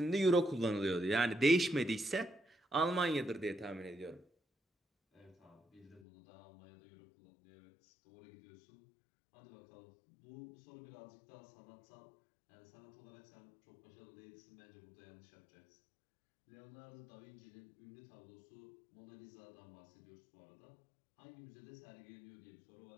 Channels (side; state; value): right; drops out; at 6.0 s